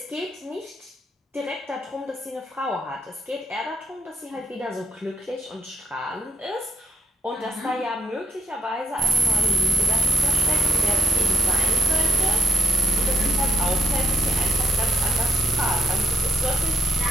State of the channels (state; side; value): normal; both; correlation 0.77